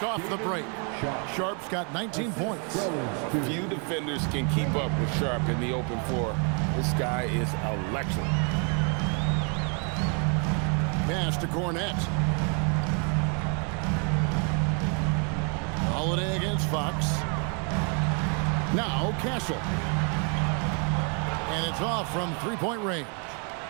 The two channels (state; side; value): quieter; left; 38.0 dB